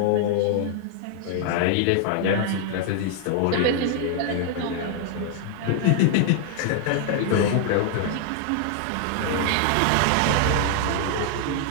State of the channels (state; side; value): different; both; correlation -0.01